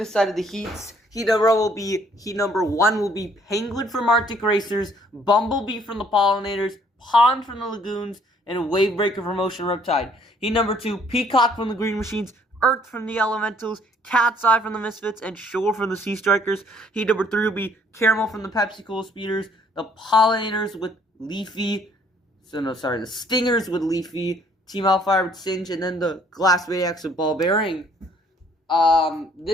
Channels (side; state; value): both; normal; correlation 0.62